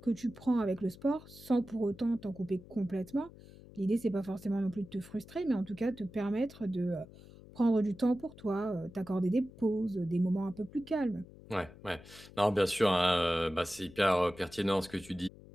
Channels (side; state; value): left; noise; hum, 20 dB below the sound